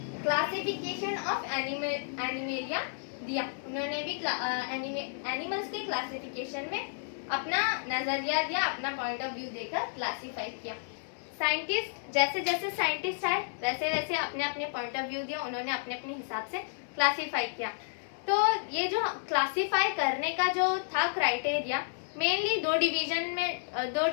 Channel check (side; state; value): right; silent; digital silence